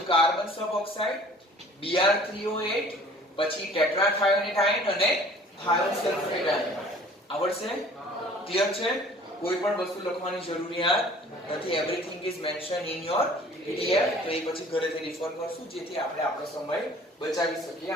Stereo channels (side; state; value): both; normal; correlation 0.50